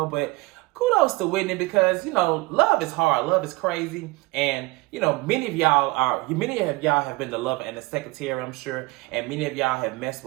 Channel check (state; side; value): quieter; left; 22.6 dB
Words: But kudos to Whitney because, love is hard. Love is crazy. And, many of y'all have been the lover and the secretary, I'm sure. And many of y'all have messed